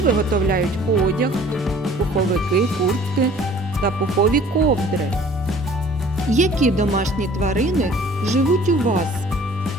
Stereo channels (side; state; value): both; normal; correlation 0.51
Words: виготовляють одяг, пуховики, куртки та пухові ковдри. Які домашні тварини живуть у вас?